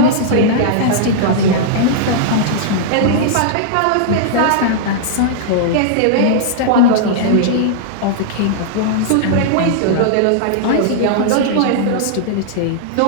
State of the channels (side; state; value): both; different; correlation -0.02